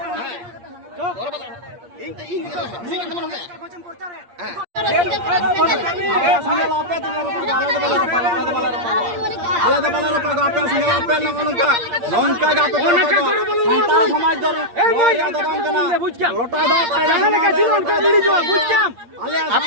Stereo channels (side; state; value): left; late; 8.6 ms